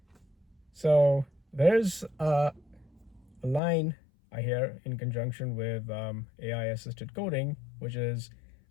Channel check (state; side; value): drops out; right; at 3.6 s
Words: So there's a line I hear in conjunction with AI assisted coding, which is